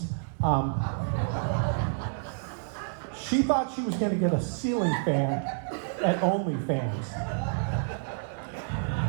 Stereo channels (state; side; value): silent; left; digital silence